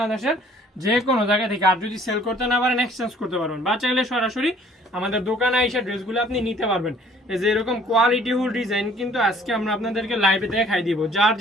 যে কোনো জায়গা থেকে। আর যদি সেল করতে না পারেন এক্সচেঞ্জ করতে পারবেন, বা চাইলে সরাসরি আমাদের দোকানে এসে ড্রেসগুলো আপনি নিতে পারবেন। এই যে এরকম কোয়ালিটিফুল ডিজাইন কিন্তু আজকে আমরা আপনাদেরকে লাইভে দেখাই দিব। যার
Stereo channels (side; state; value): both; normal; correlation 0.56